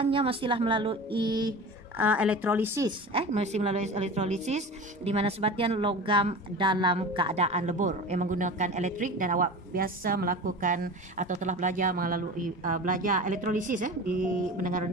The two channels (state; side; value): normal; both; correlation 0.33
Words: mestilah melalui elektrolisis, mesti melalui elektrolisis di mana sebatian logam dalam keadaan lebur menggunakan elektrik, dan awak biasa melakukan atau telah belajar melalui belajar elektrolisis di menengah